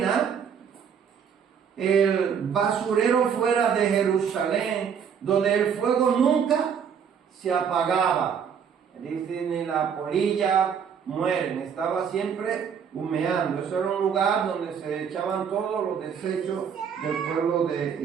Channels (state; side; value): quieter; left; 7.3 dB